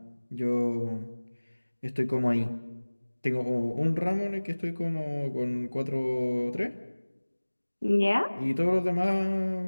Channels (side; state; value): both; inverted; correlation -1.00